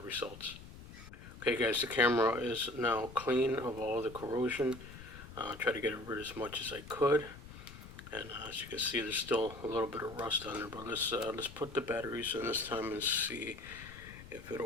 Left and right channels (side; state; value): left; noise; rumble, 15 dB below the sound